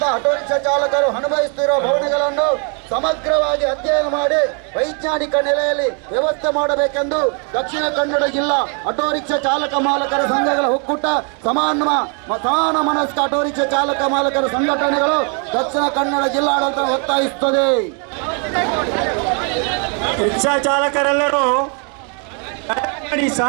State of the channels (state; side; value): quieter; left; 38.7 dB